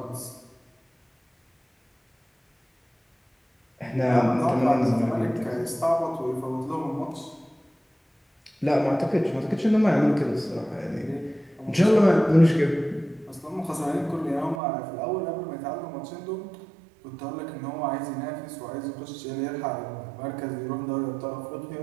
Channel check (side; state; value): left; drops out; at 14.6 s